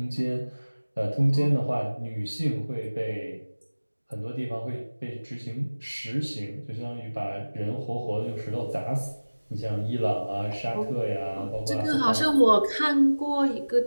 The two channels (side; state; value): both; inverted; correlation -1.00